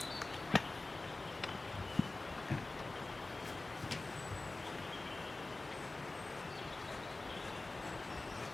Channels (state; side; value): quieter; right; 3.1 dB